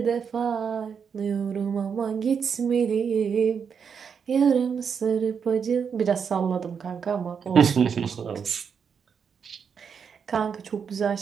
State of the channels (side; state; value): left; quieter; 6.7 dB